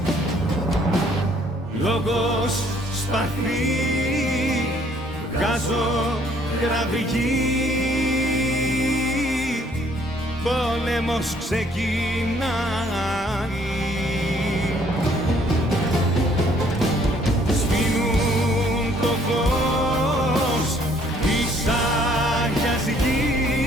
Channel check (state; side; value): normal; both; correlation 0.63